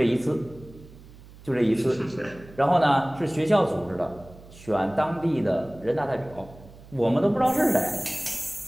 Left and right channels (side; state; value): right; noise; hum, 20 dB below the sound